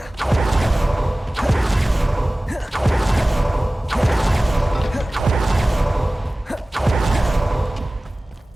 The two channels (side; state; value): both; normal; correlation 0.98